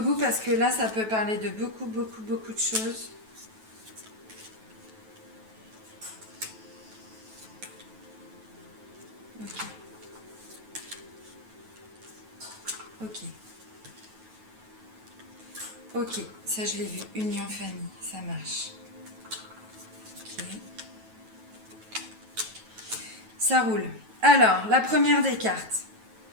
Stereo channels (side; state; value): left; late; 9.2 ms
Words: bout parce que là, ça peut parler de beaucoup de choses. Ok, ça je l'ai vu. Union famille, ça marche. Ok. Ça roule. Alors, la première des cartes.